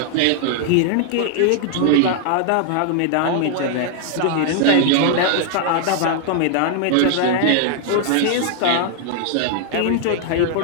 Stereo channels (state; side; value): different; both; correlation 0.00